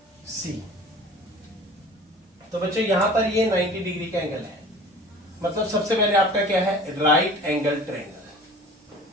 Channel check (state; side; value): normal; both; correlation 0.44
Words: सी। तो बच्चों यहां पर ये 90 डिग्री का एंगल है, मतलब सबसे पहले आपका क्या है, right angle triangle.